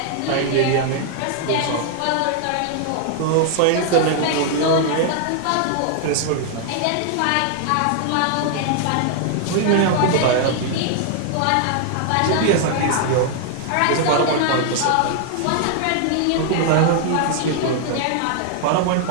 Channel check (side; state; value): both; different; correlation 0.00